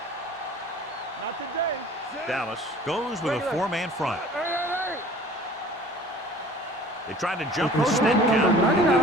Not today. Dallas goes with a four-man front. Hey. They tried to jump the snap count, and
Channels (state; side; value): normal; both; correlation 0.47